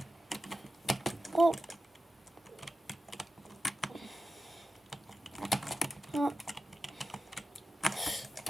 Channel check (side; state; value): both; normal; correlation 0.93